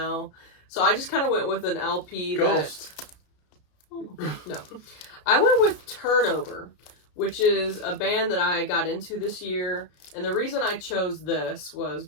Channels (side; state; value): right; late; 33 ms